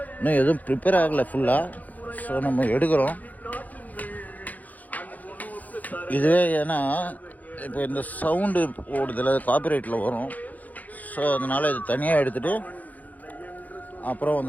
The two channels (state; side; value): late; right; 0.079 ms